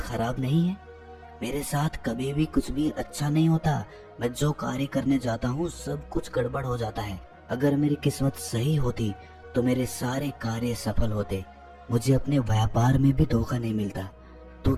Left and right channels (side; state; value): both; identical; correlation 1.00